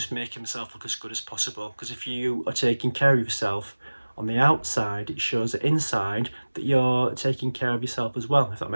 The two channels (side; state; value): both; inverted; correlation -1.00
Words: making myself look as good as possible. Because if you are taking care of yourself on the outside, it shows that inside that you're taking care of yourself as well, if that